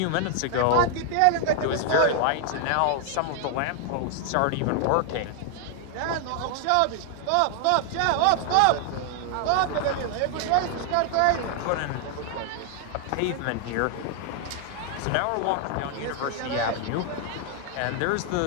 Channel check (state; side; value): different; both; correlation 0.00